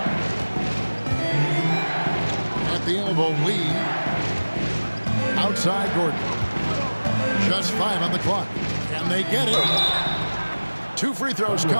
At the elbow, Lee. Outside Gordon. Just 5 on the clock. And they get it. 2 free throws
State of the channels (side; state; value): both; inverted; correlation -1.00